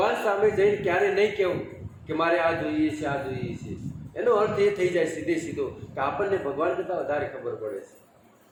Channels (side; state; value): both; identical; correlation 1.00